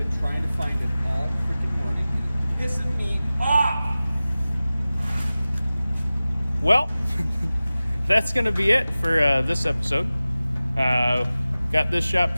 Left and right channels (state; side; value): inverted; both; correlation -0.96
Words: trying to find it all freaking morning. It's pissing me off! Well, that's gonna be it for this episode. Got this shop